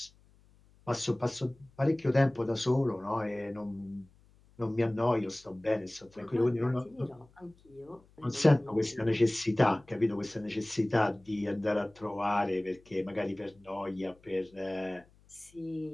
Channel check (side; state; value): left; noise; hum, 29 dB below the sound